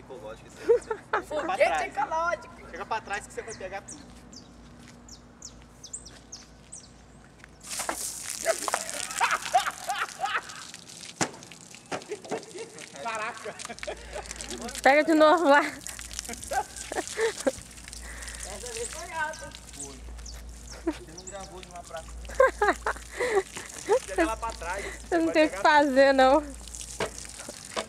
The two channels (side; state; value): both; identical; correlation 1.00